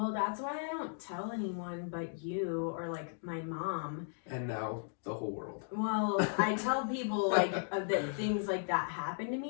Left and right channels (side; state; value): right; silent; digital silence